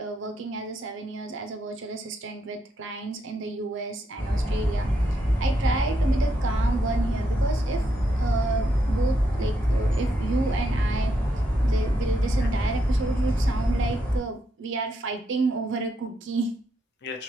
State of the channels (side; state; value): both; normal; correlation 0.79